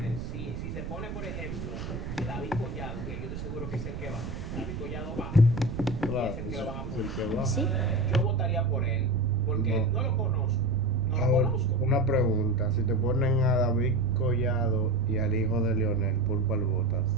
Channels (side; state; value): right; noise; rumble, 7 dB below the sound